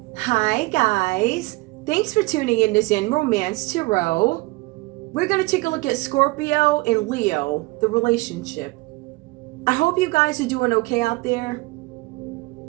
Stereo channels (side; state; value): left; quieter; 23.4 dB